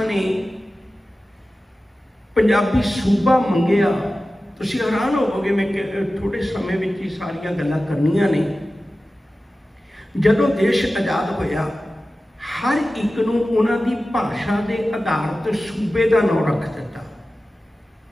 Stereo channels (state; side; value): normal; both; correlation 0.95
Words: ने पंजाबी सूबा मंगिया, तुसीं हैरान होवोगे। मैं थोड़े समय में ही सारियां गल्लां करनियां ने। जदों देश आज़ाद होया, हर एक नूं उन्हां दी भाषा के आधार ते सूबे का नाम रख दिता।